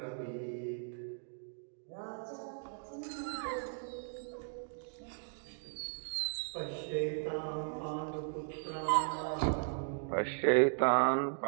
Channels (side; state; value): left; silent; digital silence